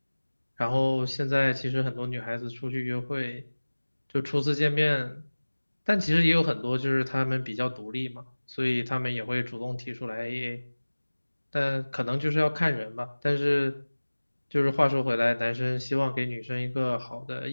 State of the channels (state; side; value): inverted; both; correlation -1.00